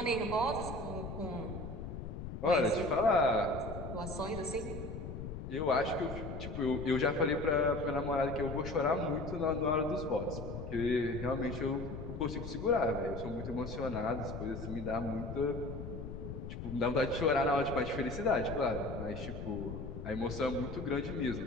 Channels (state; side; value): noise; left; rumble, 7 dB below the sound